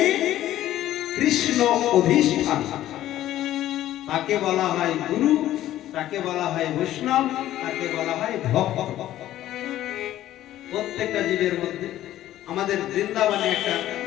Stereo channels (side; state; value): right; quieter; 13.4 dB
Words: কৃষ্ণ অধিষ্ঠান। তাকে বলা হয় গুরু, তাকে বলা হয় বৈষ্ণব, তাকে বলা হয় ভক্ত। প্রত্যেকটা জীবের মধ্যে। আমাদের বৃন্দাবনে একটা